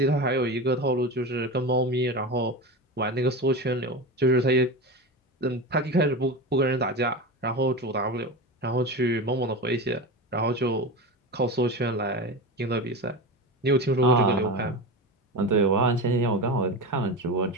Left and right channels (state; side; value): normal; both; correlation 0.24